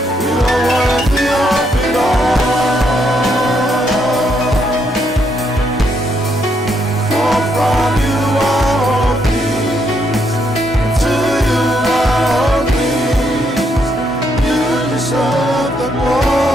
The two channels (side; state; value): both; normal; correlation 0.75